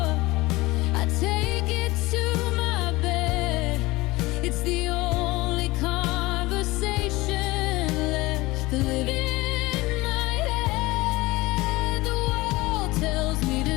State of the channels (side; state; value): right; quieter; 20.7 dB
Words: I take it to my bed. It's the only conversation left to live in my head. The world tells me